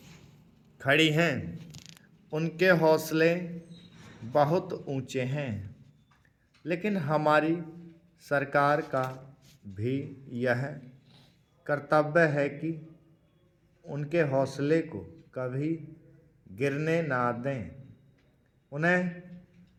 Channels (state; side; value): identical; both; correlation 1.00